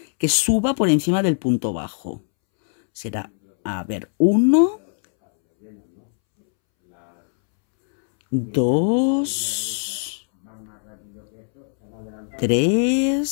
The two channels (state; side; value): silent; right; 65 dB below the other